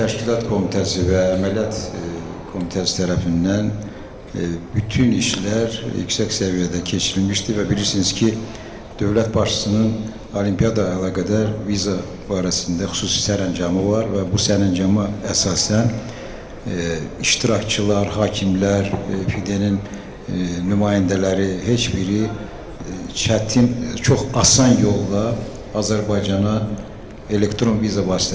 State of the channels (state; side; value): identical; both; correlation 1.00